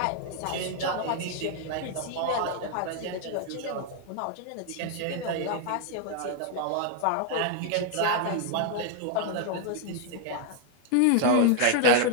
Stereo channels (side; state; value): both; different; correlation 0.00